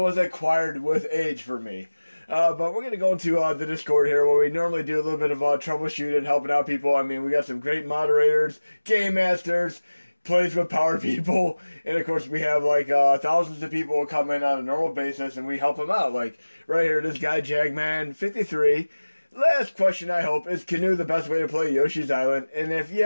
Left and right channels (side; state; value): both; inverted; correlation -1.00